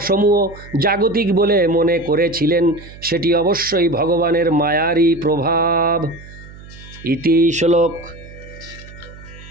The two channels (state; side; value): noise; right; hum, 18 dB below the sound